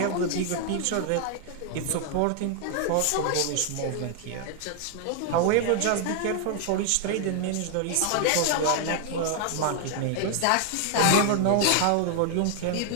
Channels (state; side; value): different; both; correlation 0.00